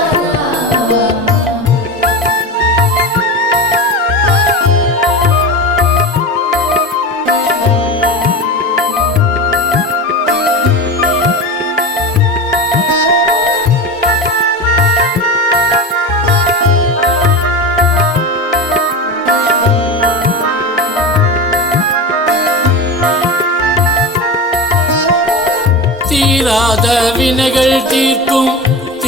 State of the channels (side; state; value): both; normal; correlation 0.25